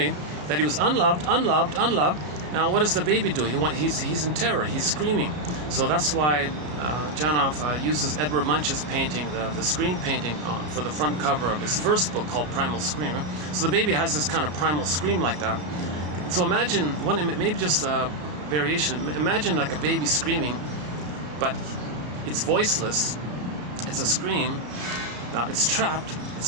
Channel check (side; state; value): left; late; 33 ms